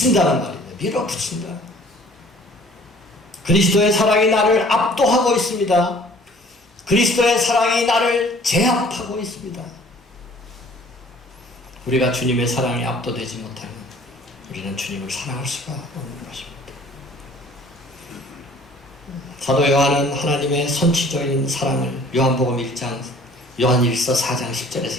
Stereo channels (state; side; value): normal; both; correlation 0.53